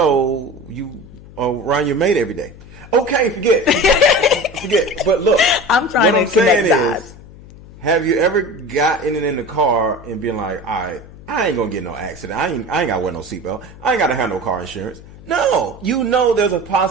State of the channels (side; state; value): left; noise; hum, 19 dB below the sound